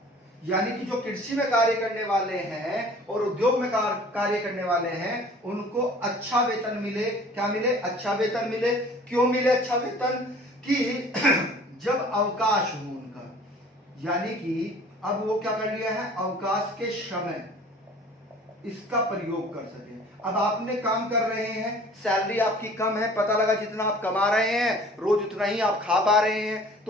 यानी कि जो कृषि में कार्य करने वाले हैं और उद्योग में कार्य करने वाले हैं, उनको अच्छा वेतन मिले। क्या मिले? अच्छा वेतन मिले। क्यों मिले अच्छा वेतन? कि जब अवकाश हो उनका, यानी कि अब वो क्या कर लिया है? अवकाश के समय इसका प्रयोग कर सके। अब आपने काम कर रहे हैं, सैलरी आपकी कम है, पता लगा जितना आप कमा रहे हैं रोज उतना ही आप खा पा रहे हैं,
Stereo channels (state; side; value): normal; both; correlation 0.48